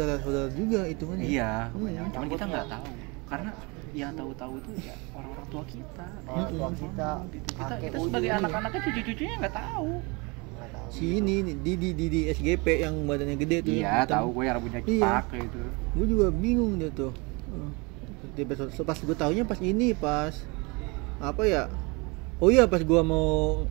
juga hitungannya. Iya, cuman kita nggak tahu karena yang tahu tuh ya orang-orang tua kita. Orang tua kita, Gitu. Kita sebagai anak-anaknya cucu-cucunya nggak tahu. Si ini di SGP yang badannya gede tuh. Iya, tahu gue yang rambutnya cepak gitu. Gue juga bingung dia tuh. Pas gue taunya pas apa ya? Oh iya, pas gue mau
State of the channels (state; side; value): quieter; left; 28.1 dB